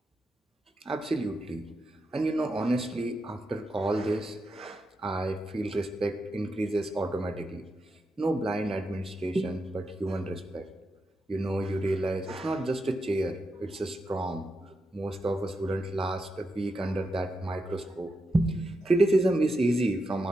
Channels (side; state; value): both; normal; correlation 0.86